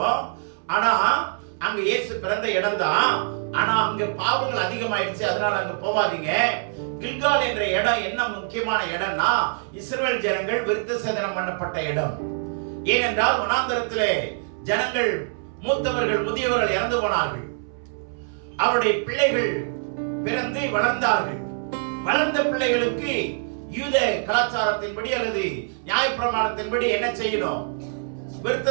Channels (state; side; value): silent; left; 62 dB below the other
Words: ஆனா அங்க இயேசு பிறந்த இடம் தான். ஆனா அங்க பாவங்கள் அதிகமாயிடுச்சு, அதனால அங்க போவாதீங்க. கில்கால் என்ற இடம் என்ன முக்கியமான இடம்னா, இஸ்ரவேல் ஜனங்கள் விருத்த சேதனம் பண்ணப்பட்ட இடம். ஏனென்றால் வனாந்தரத்திலே ஜனங்கள், மூத்தவர்கள் முதியவர்கள் இறந்து போனார்கள். அவருடைய பிள்ளைகள் பிறந்து வளர்ந்தார்கள். வளர்ந்த பிள்ளைகளுக்கு யூத கலாச்சாரத்தின்படி அல்லது நியாயப்பிரமாணத்தின்படி என்ன செய்யணும்? விருத்த